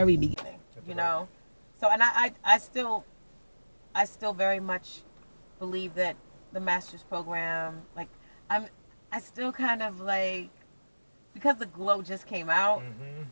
beginning, so and I still very much believe that the Masters program, like I still kind of like, because The Glow just came out,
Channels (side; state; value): both; inverted; correlation -1.00